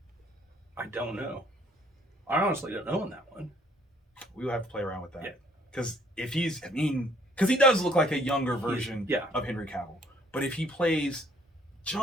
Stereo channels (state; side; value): normal; both; correlation 0.62